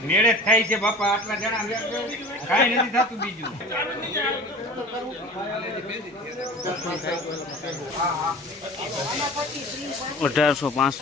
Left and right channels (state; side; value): normal; both; correlation 0.39